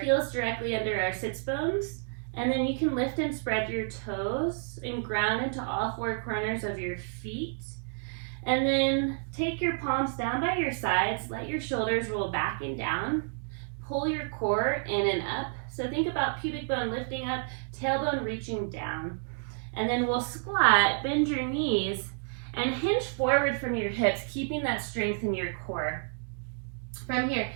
heels directly under our sits bones, and then you can lift and spread your toes and ground into all 4 corners of your feet. And then take your palms down by your sides, let your shoulders roll back and down, pull your core in and up. So think about pubic bone lifting up, tailbone reaching down. And then we'll squat, bend your knees, and hinge forward from your hips, keeping that strength in your core. From here,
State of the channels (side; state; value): left; silent; digital silence